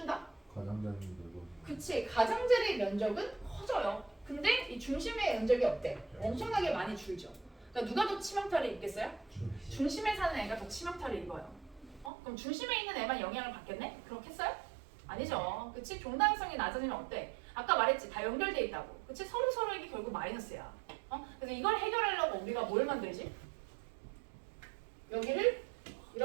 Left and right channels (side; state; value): left; drops out; at 12.1 s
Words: 가장자리인 되고. 그치, 가장자리의 면적은 커져요. 근데 이 중심의 면적이 어때? 엄청나게 많이 줄죠. 그러니까 누가 더 치명타를 입겠어요? 중심에 사는 애가 더 치명타를 입어요. 그럼 중심에 있는 애만 영향을 받겠네? 그렇겠어요? 아니죠. 그치? 종다양성이 낮아지면 어때? 아까 말했지, 다 연결돼 있다고. 그치? 서로에게 결국 마이너스야. 그래서 이걸 해결하려고 우리가 뭘 만들지? 여기를